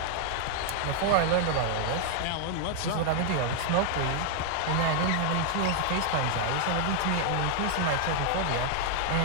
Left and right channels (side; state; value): both; different; correlation -0.01